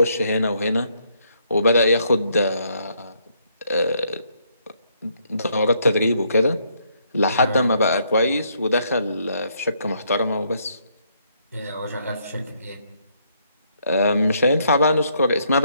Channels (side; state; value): both; inverted; correlation -0.72